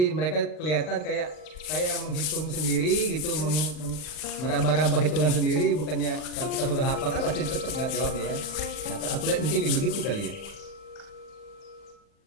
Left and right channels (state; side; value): late; right; 40 ms